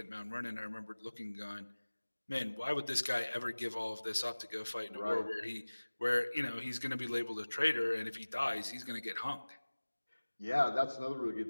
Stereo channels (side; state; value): both; inverted; correlation -1.00